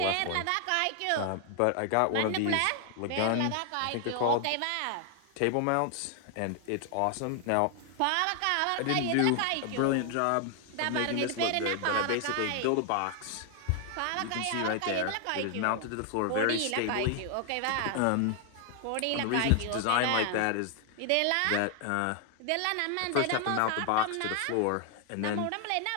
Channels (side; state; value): both; different; correlation 0.00